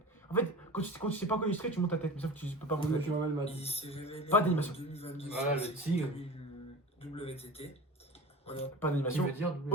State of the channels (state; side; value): normal; both; correlation 0.34